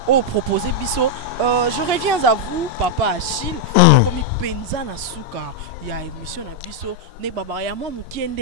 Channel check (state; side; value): normal; both; correlation -0.01